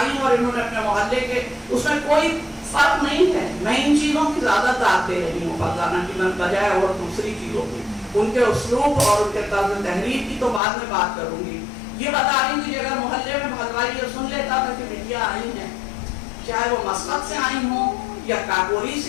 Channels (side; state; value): right; drops out; at 10.6 s